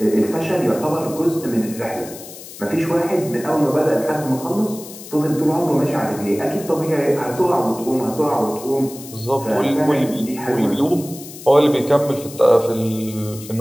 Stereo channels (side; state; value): left; noise; hiss, 15 dB below the sound